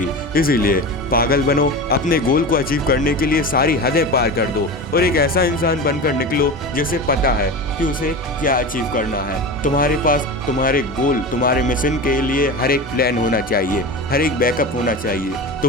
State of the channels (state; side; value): normal; both; correlation 0.27